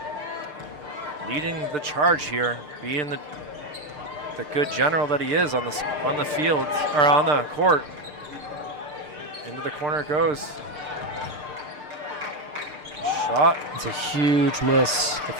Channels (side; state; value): left; late; 6.7 ms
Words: leading the charge here, being the good general that he is on the field, or on the court. Into the corner it goes. Shot. It's a huge miss